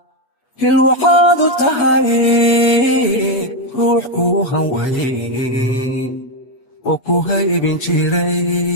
hil waxaad u tahay ruux kuu hanweyn oo ku haybin jiray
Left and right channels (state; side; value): late; right; 8.3 ms